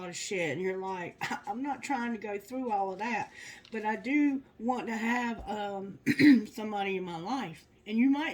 of shit, and you're like, I'm not trying to go through all of that, but I do want to have somebody in my life. And you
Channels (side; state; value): both; identical; correlation 1.00